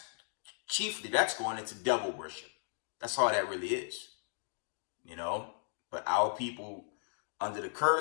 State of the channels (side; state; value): right; silent; digital silence